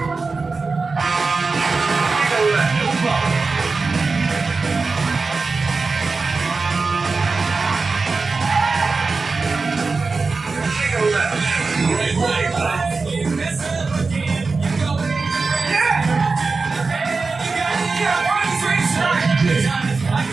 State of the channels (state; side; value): quieter; left; 4.2 dB